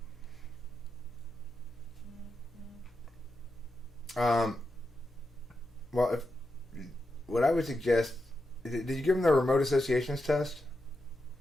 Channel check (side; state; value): both; normal; correlation 0.87